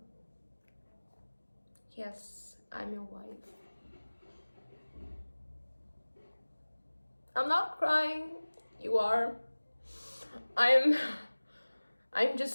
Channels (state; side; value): inverted; both; correlation -1.00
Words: Yes, I'm your wife. I'm not crying. You are. I'm